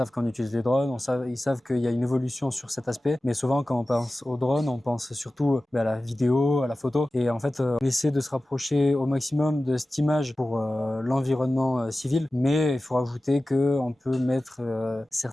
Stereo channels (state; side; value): normal; both; correlation 0.96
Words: qu'on utilise les drones, ils savent qu'il y a une évolution sur cet aspect, mais souvent quand on pense aux drones, on pense surtout à la vidéo, à la photo, et en fait on essaie de se rapprocher au maximum de cette image pour l'environnement civil, mais il faut rajouter qu'on peut mettre